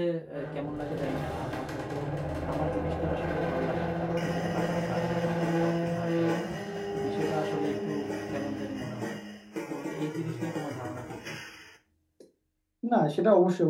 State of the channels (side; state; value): both; identical; correlation 1.00